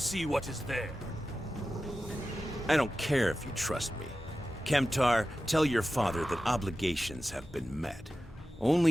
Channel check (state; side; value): normal; both; correlation 0.93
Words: what is there. I don't care if you trust me. Kemtar, tell your father that obligations have been met. Only